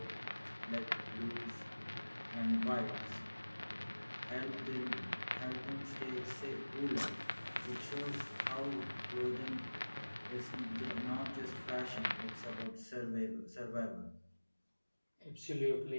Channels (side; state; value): both; inverted; correlation -1.00